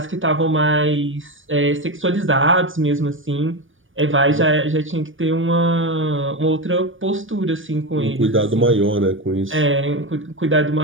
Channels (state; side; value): late; left; 0.57 ms